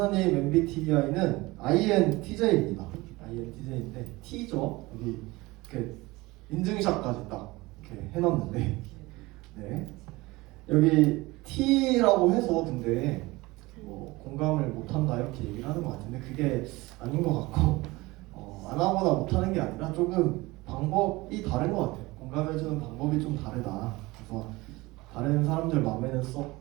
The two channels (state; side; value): quieter; left; 21.4 dB